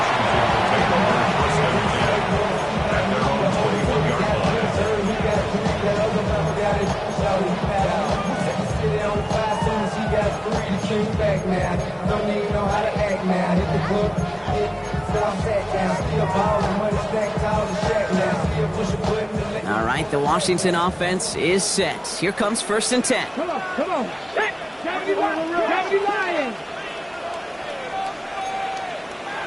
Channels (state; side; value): identical; both; correlation 1.00